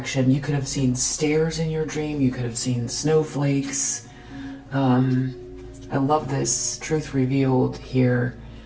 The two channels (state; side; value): identical; both; correlation 1.00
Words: You could have seen stairs in your dream. You could have seen snowflakes. I love this truth revealed here.